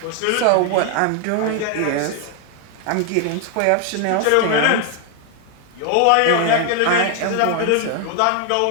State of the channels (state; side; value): different; both; correlation 0.00